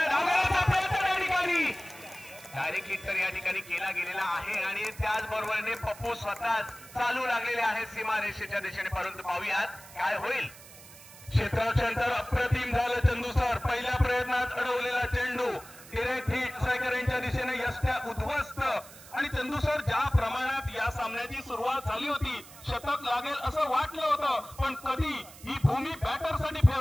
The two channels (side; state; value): right; noise; hiss, 19 dB below the sound